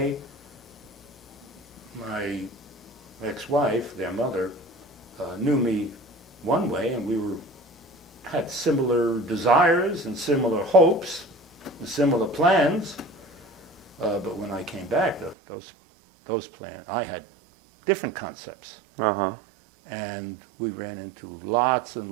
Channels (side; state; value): left; drops out; at 15.4 s